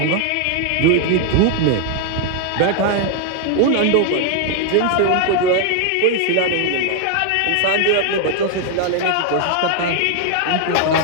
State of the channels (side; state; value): both; different; correlation 0.00